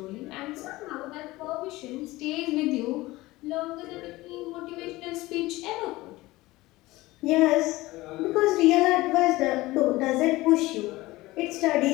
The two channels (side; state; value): right; quieter; 19.2 dB